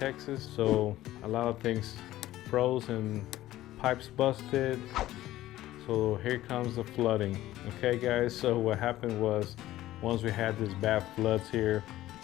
so a lot of things froze and pipes busted. So here comes the flooding. Okay guys, so what happened was once we had this bad floods here,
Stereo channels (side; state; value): right; quieter; 15.0 dB